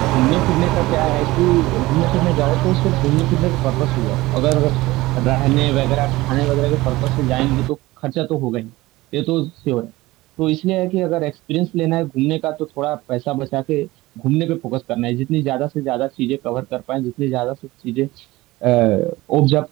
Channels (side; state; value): left; quieter; 19.2 dB